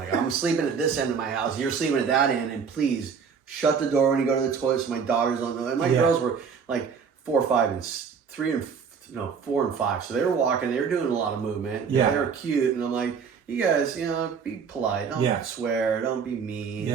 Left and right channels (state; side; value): quieter; left; 6.2 dB